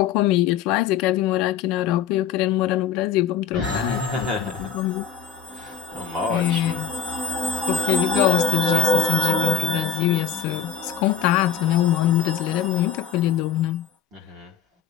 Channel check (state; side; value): quieter; right; 7.7 dB